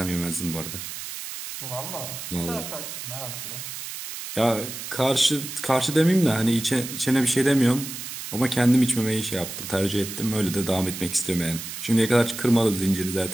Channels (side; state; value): right; noise; hiss, 8 dB below the sound